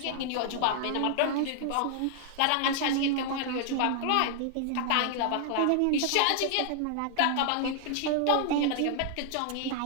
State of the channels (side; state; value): both; different; correlation 0.00